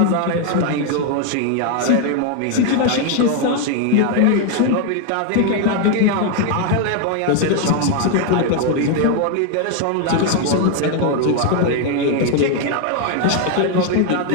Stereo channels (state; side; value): different; both; correlation 0.01